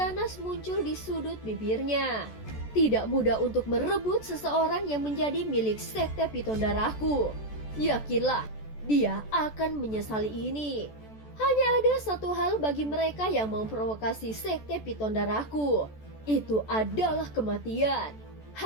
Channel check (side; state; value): right; late; 14 ms